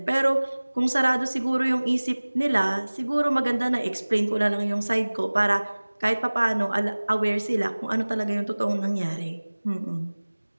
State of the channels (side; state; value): both; inverted; correlation -1.00